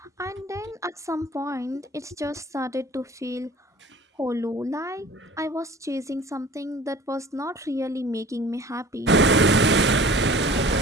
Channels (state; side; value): normal; both; correlation 0.45